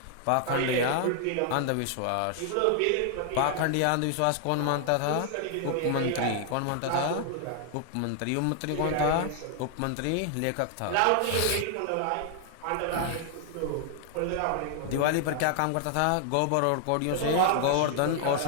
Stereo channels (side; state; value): both; different; correlation 0.00